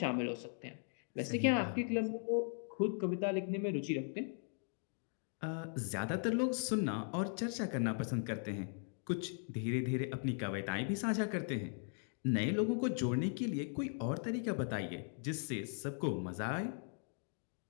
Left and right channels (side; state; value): right; silent; 52 dB below the other